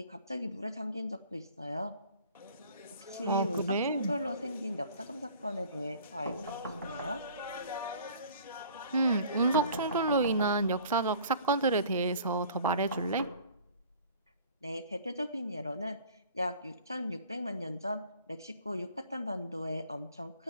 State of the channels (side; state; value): both; inverted; correlation -0.49